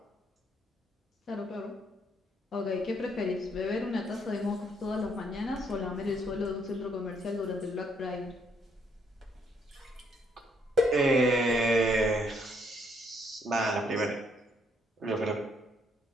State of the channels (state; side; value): normal; both; correlation 0.71